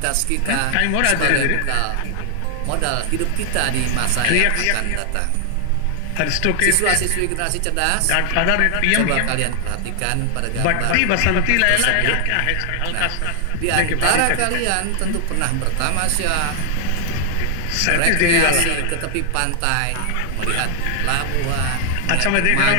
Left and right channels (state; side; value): different; both; correlation 0.00